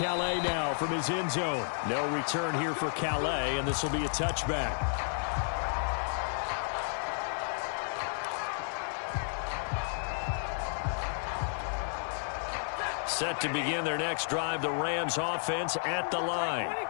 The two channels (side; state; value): right; silent; digital silence